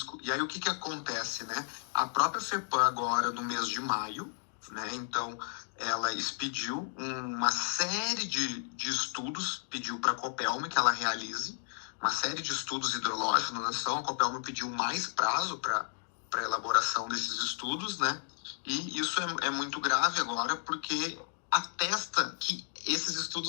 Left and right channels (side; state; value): right; silent; 56 dB below the other